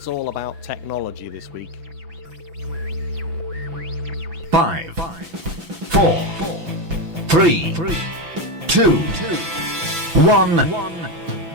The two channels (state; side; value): late; left; 6.0 ms